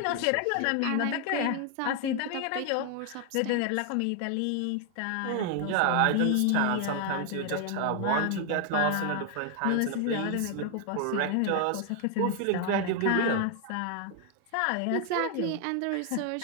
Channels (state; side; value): different; both; correlation 0.00